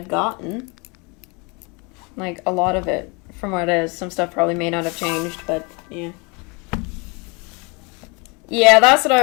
gotten. Like, a lot of it from what it is. Some stuff probably may not have changed, but yeah. Yeah, that's what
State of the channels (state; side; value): quieter; right; 30.1 dB